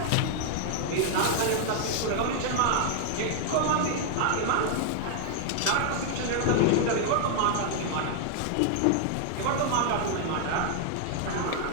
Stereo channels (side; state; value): both; different; correlation 0.00